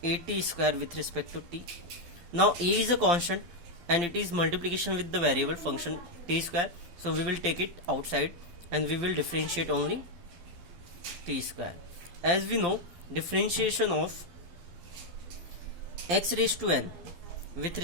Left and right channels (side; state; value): left; late; 12 ms